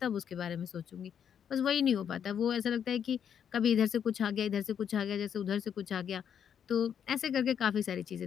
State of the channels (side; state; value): right; quieter; 8.4 dB